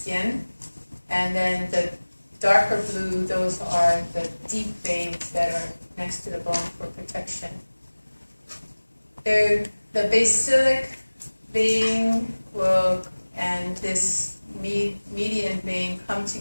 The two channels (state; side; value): inverted; both; correlation -1.00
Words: And then the darker blue, those are the deep veins that are next to the bone for protection. The basilic vein and this median vein come